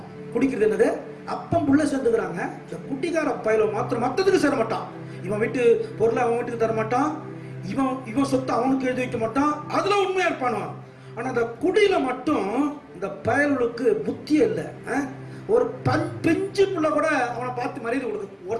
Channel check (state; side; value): identical; both; correlation 1.00